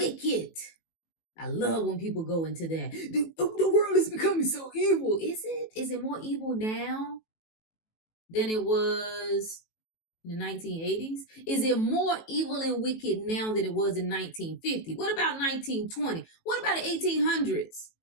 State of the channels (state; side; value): late; right; 18 ms